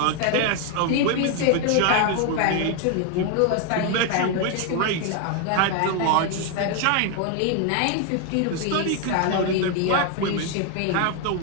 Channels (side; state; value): both; different; correlation 0.01